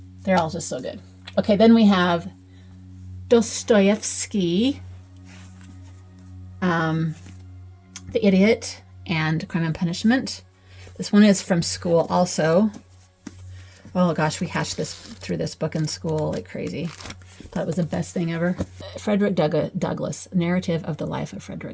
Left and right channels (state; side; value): identical; both; correlation 1.00